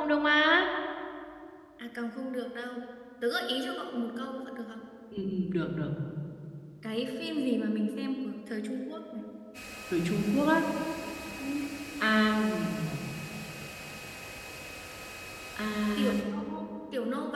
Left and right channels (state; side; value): identical; both; correlation 1.00